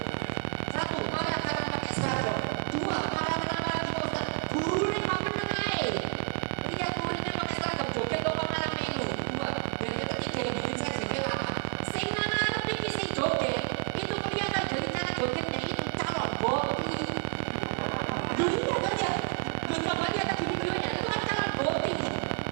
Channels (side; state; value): left; quieter; 37.6 dB